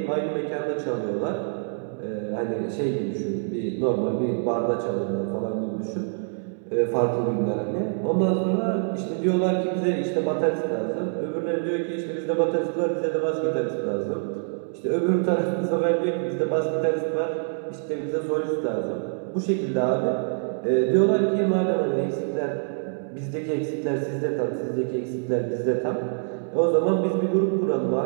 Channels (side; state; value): left; silent; digital silence